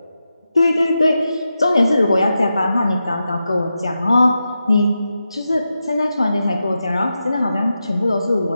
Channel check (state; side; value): inverted; both; correlation -0.89